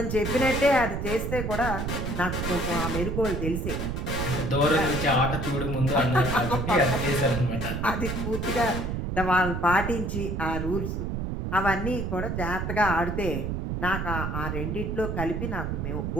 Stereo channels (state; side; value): noise; right; rumble, 2 dB below the sound